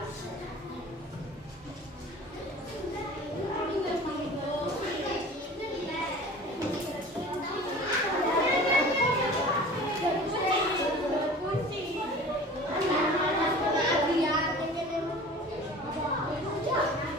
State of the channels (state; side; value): normal; both; correlation 0.41